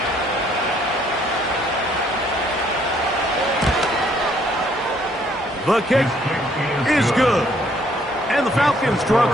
The kick is good. And the Falcons draw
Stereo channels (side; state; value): both; normal; correlation 0.65